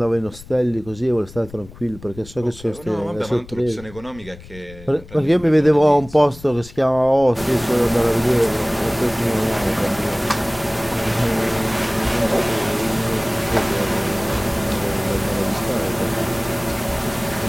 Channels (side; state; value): left; noise; rumble, 18 dB below the sound